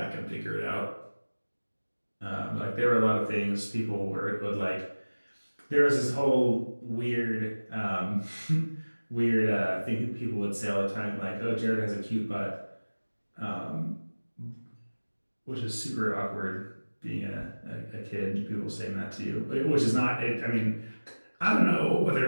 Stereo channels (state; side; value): inverted; both; correlation -1.00